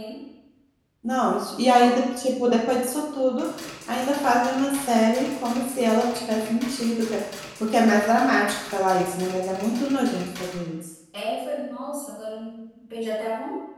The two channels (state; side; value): identical; both; correlation 1.00